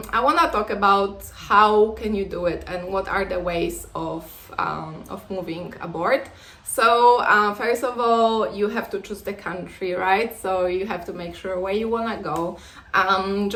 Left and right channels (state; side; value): identical; both; correlation 1.00